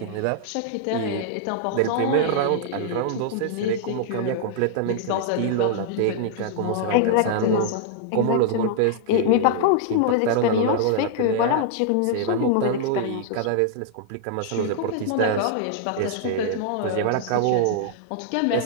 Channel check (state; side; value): different; both; correlation -0.01